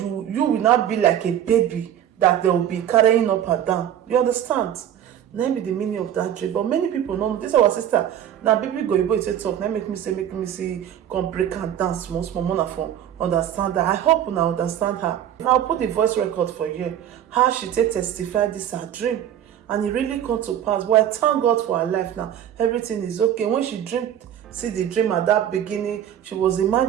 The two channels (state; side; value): quieter; left; 10.4 dB